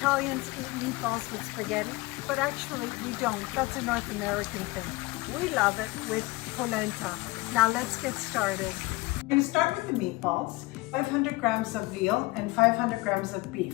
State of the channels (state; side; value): quieter; right; 22.6 dB